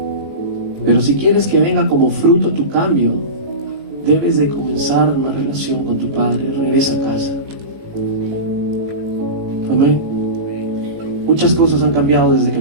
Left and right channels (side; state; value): left; late; 18 ms